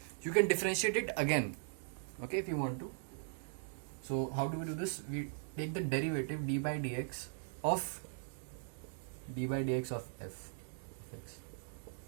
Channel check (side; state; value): left; silent; digital silence